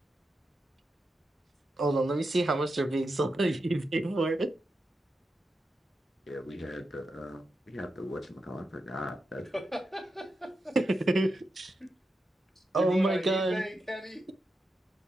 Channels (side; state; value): both; normal; correlation 0.88